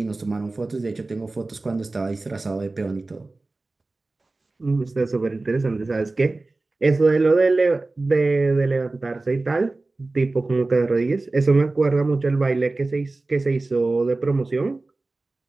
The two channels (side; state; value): left; quieter; 3.3 dB